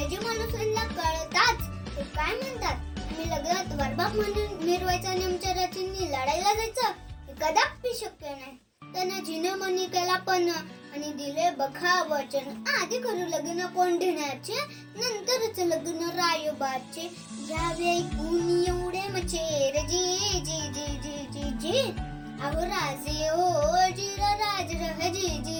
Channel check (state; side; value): identical; both; correlation 1.00